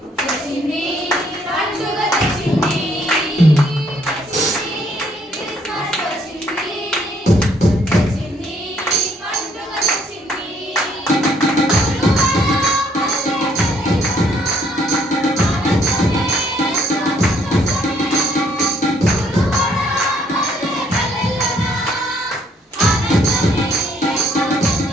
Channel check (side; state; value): both; normal; correlation 0.67